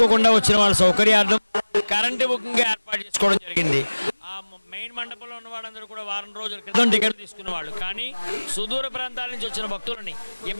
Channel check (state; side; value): inverted; both; correlation -1.00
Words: వచ్చిన వాళ్ళ సౌకర్యార్థం కరెంటు బుకింగ్ ఏర్పాటు చేసుకోవడం జరిగింది. ఆ మెయిన్ మండపంలో ఉన్న వాళ్ళందరూ కూడా వారం రోజుల క్రితం టికెట్ తీసుకున్న వాళ్ళు, కానీ సుదూర ప్రాంతాల నుంచి వచ్చిన భక్తులని